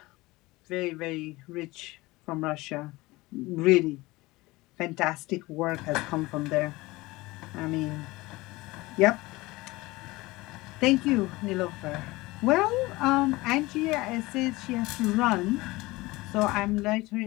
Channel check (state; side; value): quieter; right; 20.9 dB